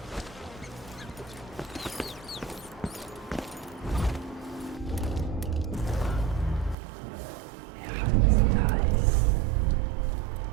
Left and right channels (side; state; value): left; drops out; at 6.8 s